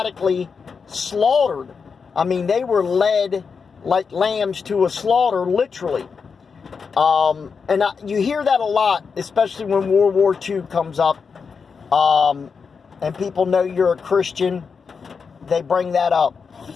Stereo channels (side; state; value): right; quieter; 5.6 dB